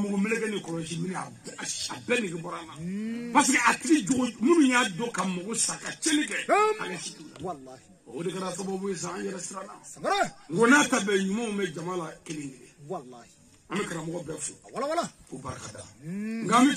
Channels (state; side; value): identical; both; correlation 1.00